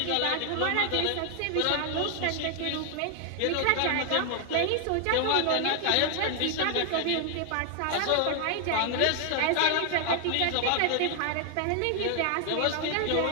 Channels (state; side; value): different; both; correlation 0.00